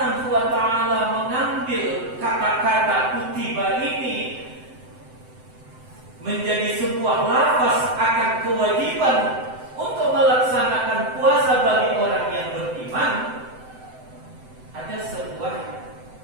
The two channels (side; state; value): left; late; 7.8 ms